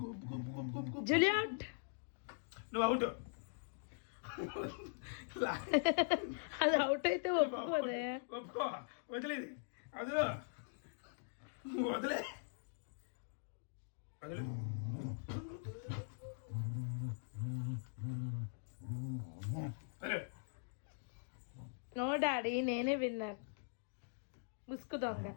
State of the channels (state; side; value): silent; right; digital silence